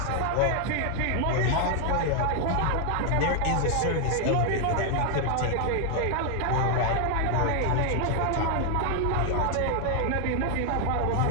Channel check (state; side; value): different; both; correlation 0.00